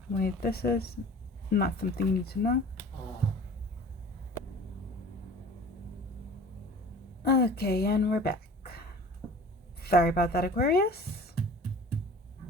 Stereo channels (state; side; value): normal; both; correlation 0.43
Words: Wait, this is not something you need to know. Okay, and we're back. Sorry about that, Aquarius.